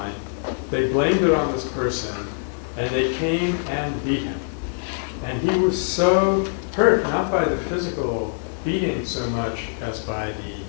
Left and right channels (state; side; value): silent; right; digital silence